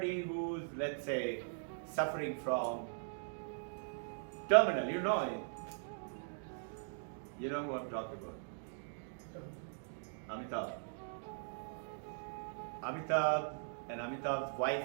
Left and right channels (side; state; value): left; silent; digital silence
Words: who's, let's say, suffering from terminal, you know it. You know who I'm talking about. Amitabh. Amitabh and Amitabh's